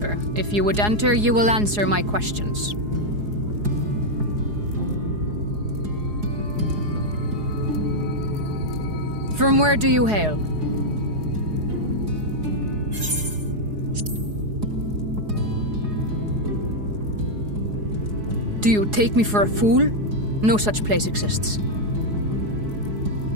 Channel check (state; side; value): late; left; 4.8 ms